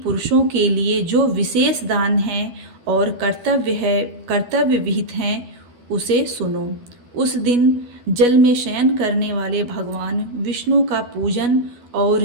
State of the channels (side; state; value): left; late; 12 ms